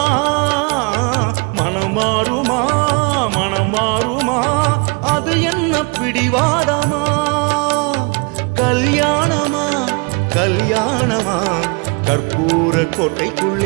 மனம் மாறுமா மனம் மாறுமா அது என்ன பிடிவாதமா கல்யாணமா கல்யாணமா கற்பூர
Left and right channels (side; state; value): left; quieter; 32.1 dB